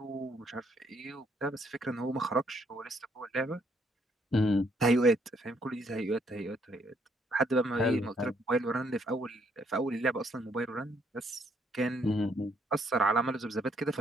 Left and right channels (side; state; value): both; normal; correlation 0.70